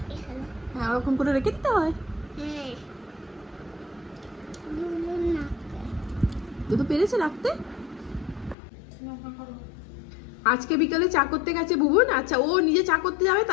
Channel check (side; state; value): right; drops out; at 8.6 s